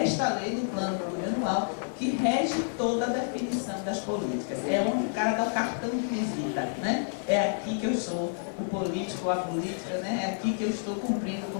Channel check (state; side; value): silent; right; digital silence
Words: esta lei do plano plurianual, que rege toda a definição das políticas. É onde o cara dá o cartão de visita, né? É aqui que eu sou o político ou a política, né? É aqui que eu estou cumprindo com